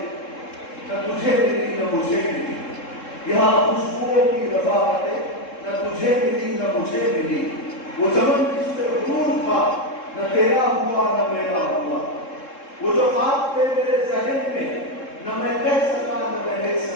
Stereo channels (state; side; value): late; right; 3.7 ms